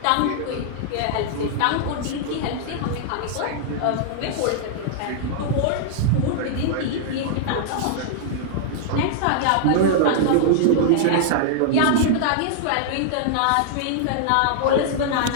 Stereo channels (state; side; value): different; both; correlation -0.01